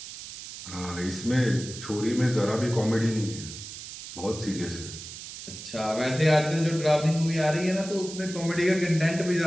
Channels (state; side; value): noise; right; hiss, 11 dB below the sound